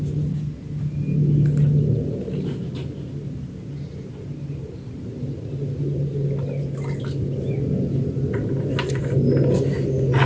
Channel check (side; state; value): both; identical; correlation 1.00